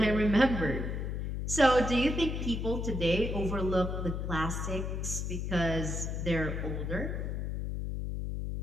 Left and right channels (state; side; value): noise; left; hum, 3 dB below the sound